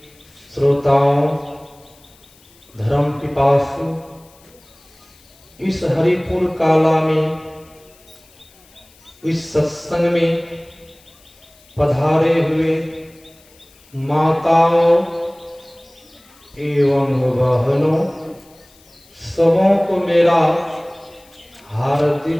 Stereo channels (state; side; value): noise; left; hiss, 28 dB below the sound